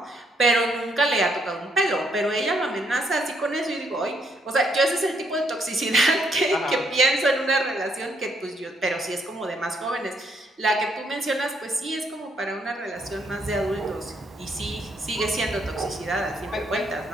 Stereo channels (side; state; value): both; normal; correlation 0.72